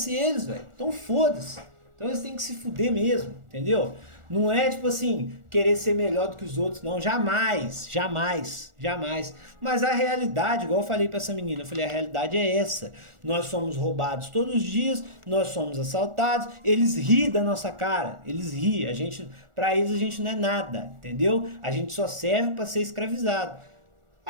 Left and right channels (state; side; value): late; left; 1.4 ms